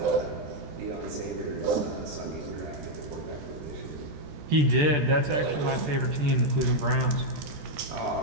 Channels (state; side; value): late; left; 14 ms